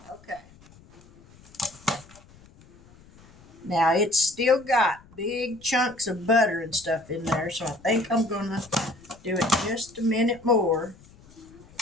Now it's still got big chunks of butter and stuff in there, so I think I'm going to do it just a minute more.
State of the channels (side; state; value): left; noise; rumble, 25 dB below the sound